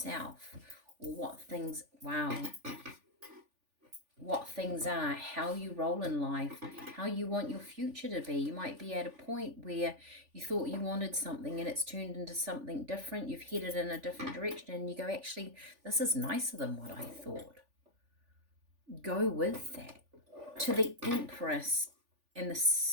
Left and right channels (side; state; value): left; late; 3.4 ms